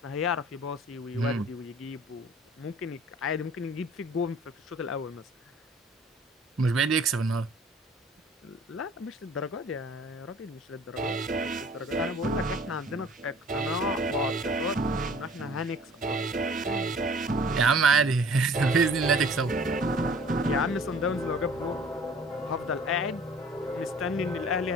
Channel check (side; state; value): both; normal; correlation 0.50